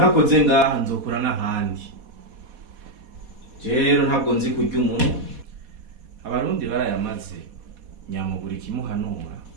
ngaha nzokura n'ahandi. Rero ntabwo nzi kurya umuntu. Abarundi barayamaze nyamuburi kimuhanura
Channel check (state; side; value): late; left; 4.2 ms